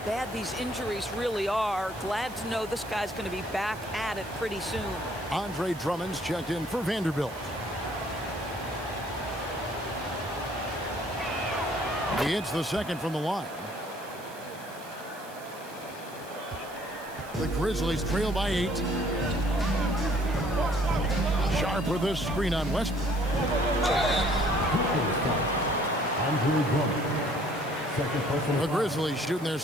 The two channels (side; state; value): right; noise; hiss, 19 dB below the sound